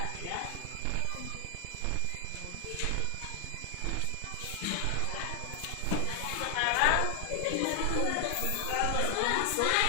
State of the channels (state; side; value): different; both; correlation 0.00